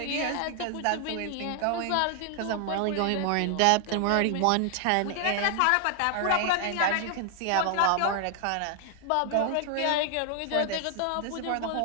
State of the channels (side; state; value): both; different; correlation 0.00